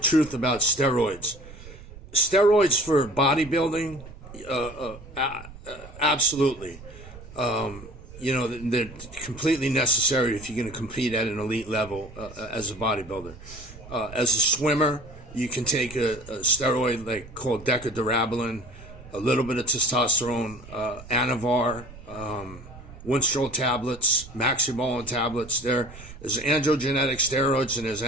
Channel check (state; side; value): noise; right; rumble, 17 dB below the sound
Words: about steroids. Steroids for bodybuilding, absolutely. They're completely necessary if you're going to compete at an elite level as a bodybuilder. As a swimmer, you can take a steroid called decadurabolin, a little bit of testosterone, Anavar, Winstrol tablets, Maxibolin tablets. There's androgenetic steroids and there's